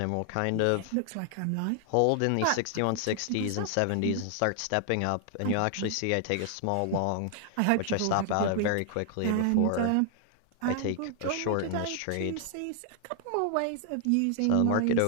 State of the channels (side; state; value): both; different; correlation 0.00